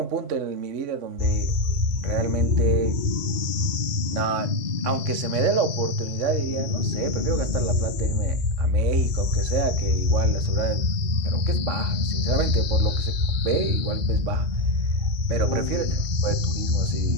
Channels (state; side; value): late; left; 3.5 ms